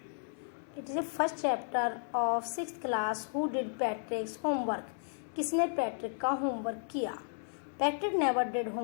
It is the first chapter of 6th class. Who did Patrick's homework? किसने Patrick का homework किया? Patrick never did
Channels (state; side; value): silent; right; digital silence